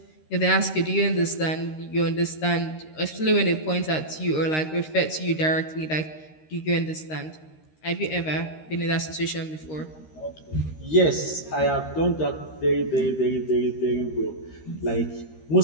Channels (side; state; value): right; late; 13 ms